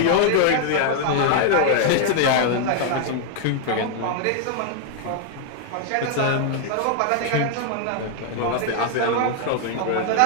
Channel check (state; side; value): different; both; correlation 0.00